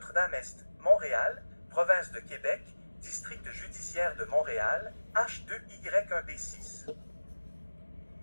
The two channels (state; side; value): inverted; both; correlation -1.00